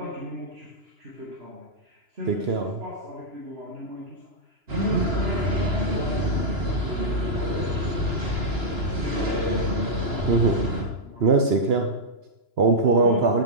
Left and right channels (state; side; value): late; left; 2.9 ms